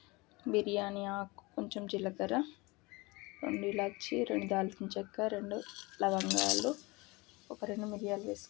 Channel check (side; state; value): right; quieter; 24.4 dB